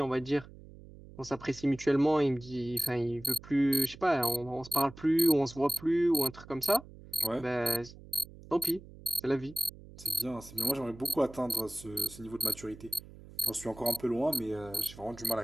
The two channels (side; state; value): right; noise; hum, 18 dB below the sound